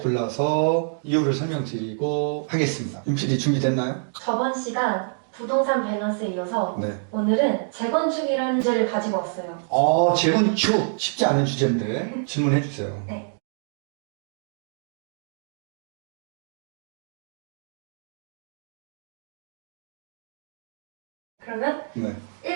이유를 설명드리고 하겠습니다. 윤 PD 준비됐나요? 저번 시간 부동산 밸런스에 이어서 네. 오늘은 재건축이라는 주제를 가지고 왔어요. 재건축 쉽지 않은 주제인데 질문해 주세요. 네. 그러면 네.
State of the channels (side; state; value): left; silent; digital silence